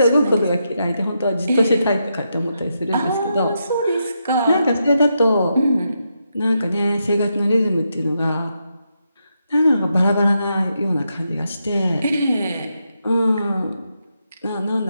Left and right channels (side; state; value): both; inverted; correlation -0.83